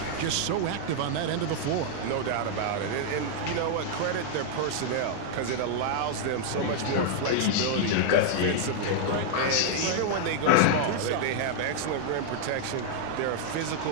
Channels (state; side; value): different; both; correlation -0.01